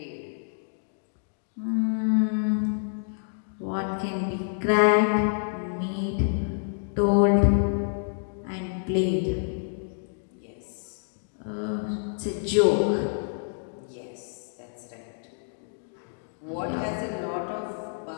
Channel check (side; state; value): right; silent; digital silence